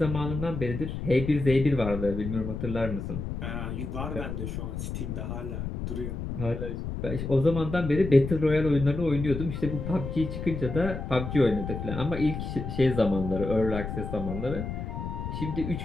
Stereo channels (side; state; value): left; noise; rumble, 5 dB below the sound